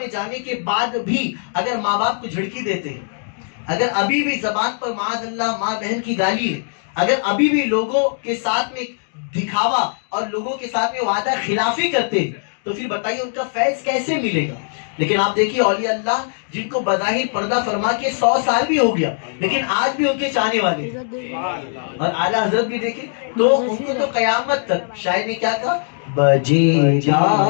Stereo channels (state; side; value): silent; right; digital silence